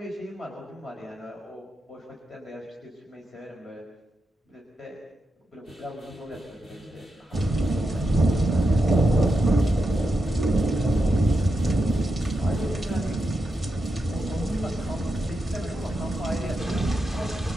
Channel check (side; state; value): both; normal; correlation 0.87